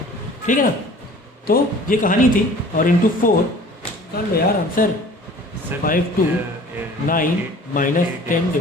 ठीक है ना। तो ये कहानी थी, और इंटू 4 कर लो यार answer, 5 to 9 minus 10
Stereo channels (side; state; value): both; normal; correlation 0.47